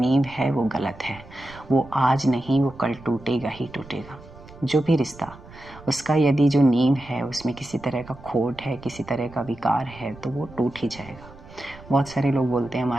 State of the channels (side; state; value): right; noise; rumble, 19 dB below the sound